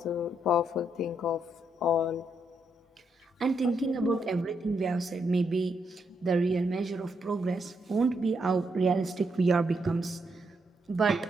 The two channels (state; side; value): normal; both; correlation 0.78